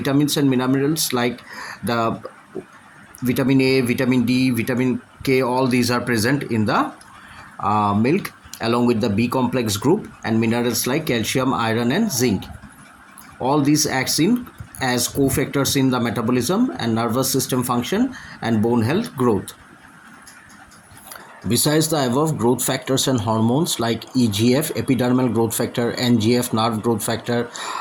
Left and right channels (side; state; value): both; identical; correlation 1.00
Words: and minerals like the vitamin A, vitamin D, vitamin K, all these are present in the milk, along with the B complex group, and minerals like calcium, iron and zinc. All these acts in as cofactors in the metabolism and nervous system function and bone health growth. Besides the above growth factors and hormones like EGF, epidermal growth factor, NGF, nerve growth factor,